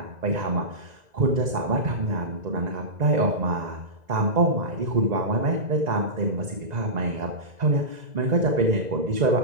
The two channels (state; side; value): late; left; 2.0 ms